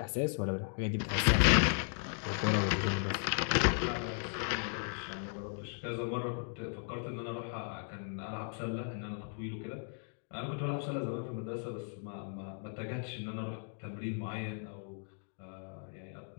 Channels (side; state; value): right; silent; 54 dB below the other